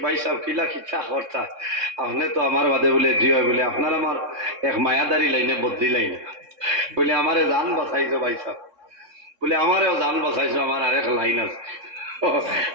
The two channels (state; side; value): late; left; 3.6 ms